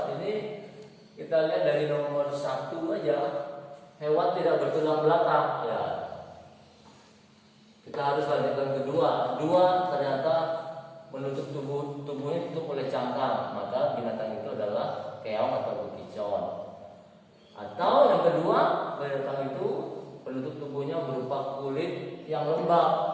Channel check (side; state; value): both; identical; correlation 1.00